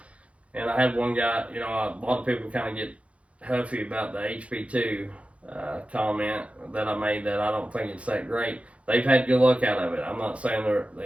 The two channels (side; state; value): left; late; 0.063 ms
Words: And I had one guy, you know, a lot of people kind of get huffy about the HP2 comment that I made, that I don't think it's that great. They've had good luck out of it. I'm not saying